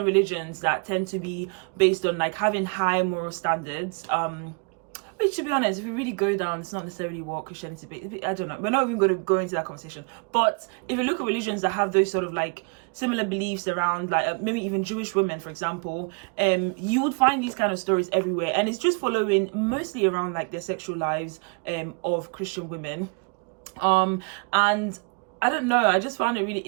religions that tend to be based on like having high moral standards, which, to be honest, if you really go down, it's not necessarily what Christianity is. I don't know. We're not even going to go into that conversation. But if you look at religions that have those sort of like similar beliefs around, like maybe even Jewish women, for example, you would find these kind of stories everywhere. And it's just following mostly around like the sexual lives of Christian women. And I don't know, I just found it really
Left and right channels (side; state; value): left; quieter; 37.3 dB